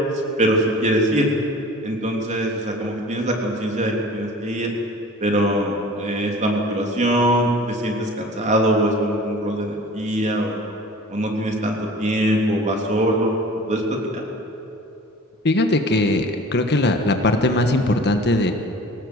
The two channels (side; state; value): both; normal; correlation 0.43